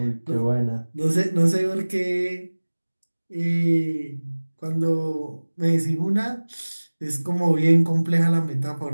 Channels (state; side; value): inverted; both; correlation -1.00